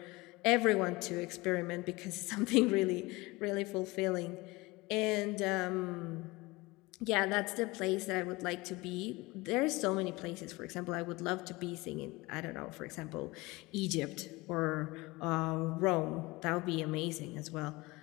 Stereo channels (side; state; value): right; quieter; 22.5 dB